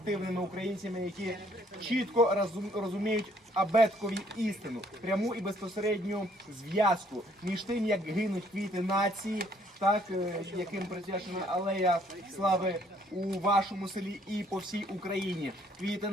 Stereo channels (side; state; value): both; normal; correlation 0.64